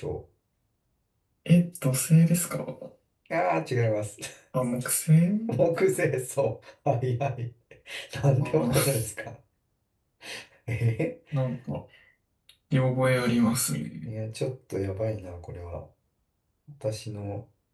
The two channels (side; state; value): both; identical; correlation 1.00